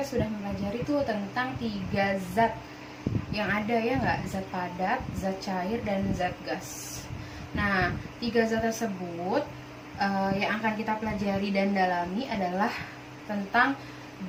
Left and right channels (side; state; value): both; identical; correlation 1.00